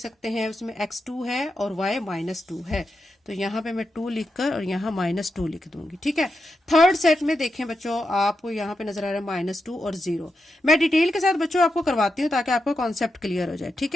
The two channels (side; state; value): both; normal; correlation 0.87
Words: हैं, उसमें x 2 है और y -2 है। तो यहाँ पे मैं 2 लिखकर और यहाँ -2 लिख दूंगी। ठीक है, थर्ड सेट में देखें बच्चों, आपको यहाँ पे नजर आ रहा है -2 और 0। मैं डिटेल के साथ बच्चों आपको करवाती हूँ ताकि आपको कॉन्सेप्ट क्लियर हो जाए। ठीक